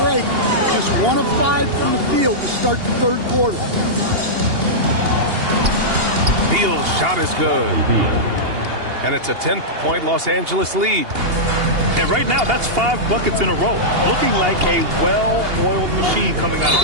break. Just 1 of 5 from the field to start the third quarter. Beal's shot is good. And it's a 10-point Los Angeles lead. And right now, that's 5 buckets in a row. Looking like a well-oiled machine coming out of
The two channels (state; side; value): late; left; 2.8 ms